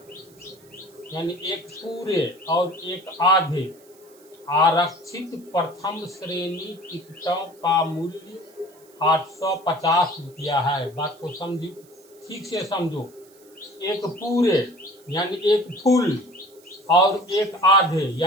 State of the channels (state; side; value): noise; right; hiss, 28 dB below the sound